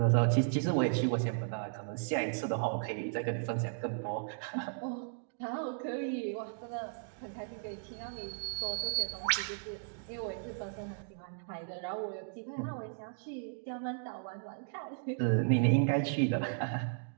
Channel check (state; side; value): silent; left; digital silence